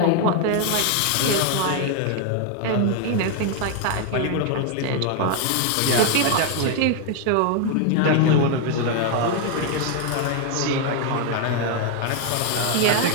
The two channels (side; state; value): both; different; correlation 0.01